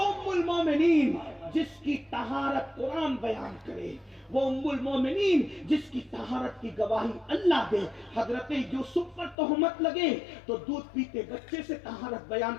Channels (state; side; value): drops out; right; at 9.3 s